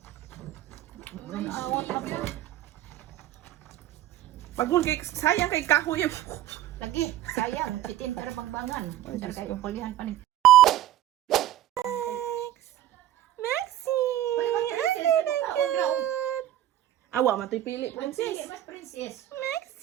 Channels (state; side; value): quieter; left; 12.9 dB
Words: Awat kami. Pagul kay sayang kay kahoy. Lagi, sayang, itin para pagbangan. Dar kay upulihan pa ni. Maxi. Awa man to'y pili, princess. Mas princess.